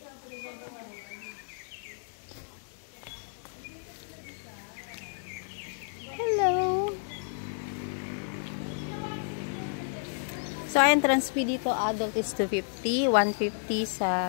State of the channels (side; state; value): right; silent; digital silence